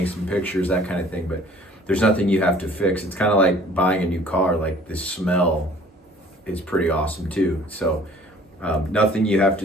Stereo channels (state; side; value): normal; both; correlation 0.53